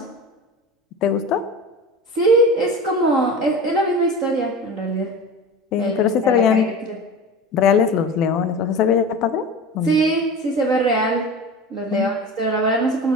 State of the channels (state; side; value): normal; both; correlation 0.32